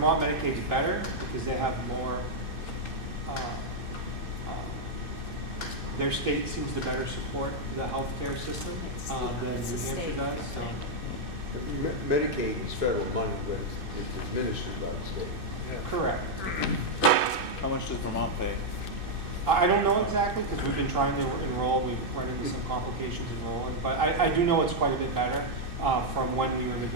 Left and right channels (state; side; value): late; left; 2.6 ms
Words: Medicaid's better because they have more, their state seems to better support the healthcare system than New Hampshire does, so. Medicaid is federal money, but it's administered by the state. Correct. How much does Vermont pay? I don't know exactly because we've been trying to enroll, we've run into some complications enrolling, but I do know it's quite a bit better from when we were